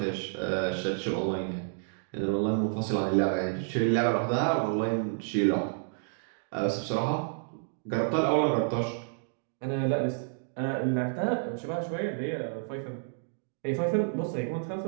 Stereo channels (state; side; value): silent; left; digital silence